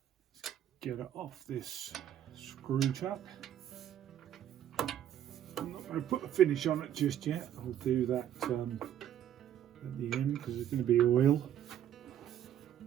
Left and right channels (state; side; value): quieter; left; 10.6 dB